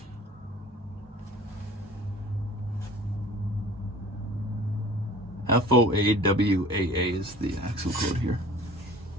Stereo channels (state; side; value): normal; both; correlation 0.46